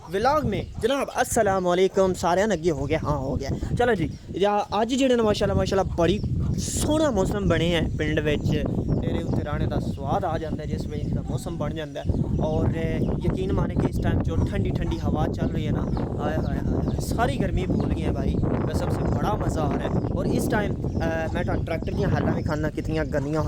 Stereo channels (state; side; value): identical; both; correlation 1.00